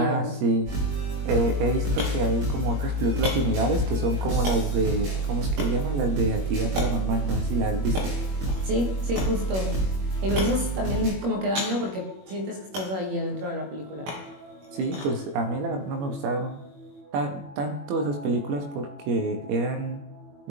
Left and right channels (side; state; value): left; late; 21 ms